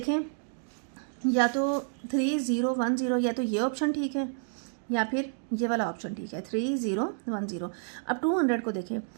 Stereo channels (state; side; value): silent; left; digital silence